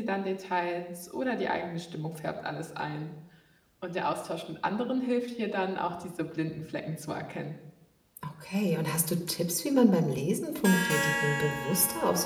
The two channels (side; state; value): both; identical; correlation 1.00